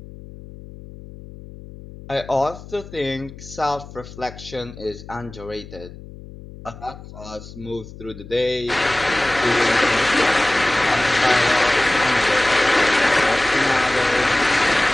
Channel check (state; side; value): noise; left; hum, 16 dB below the sound